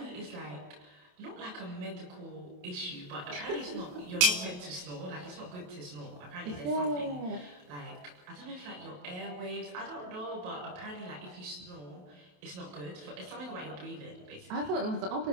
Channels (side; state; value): left; late; 27 ms